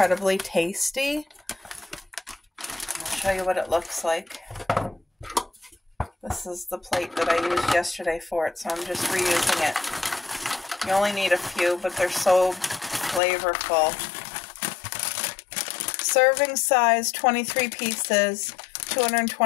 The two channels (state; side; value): drops out; right; at 13.2 s